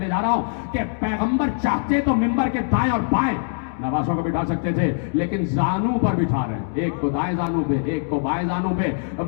जा रहा हूं कि पैगंबर चाहते तो मिंबर के दाएं और बाएं नवासों को बिठा सकते थे, लेकिन जानू पर बिठा रहे हैं, एक को दाएं जानू पे एक को बाएं जानू पे।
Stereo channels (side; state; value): right; silent; digital silence